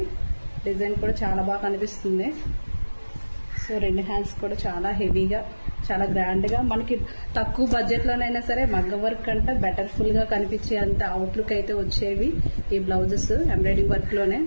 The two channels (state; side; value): inverted; both; correlation -1.00